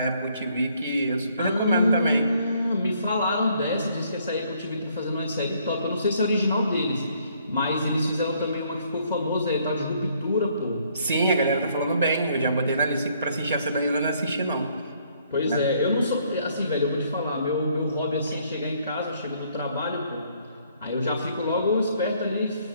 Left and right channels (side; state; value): both; inverted; correlation -0.66